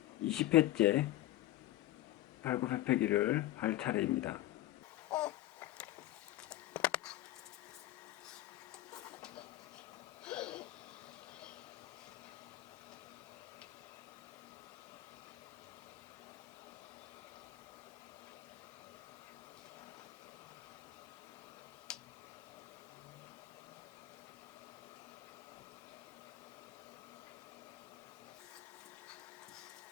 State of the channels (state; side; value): quieter; right; 15.3 dB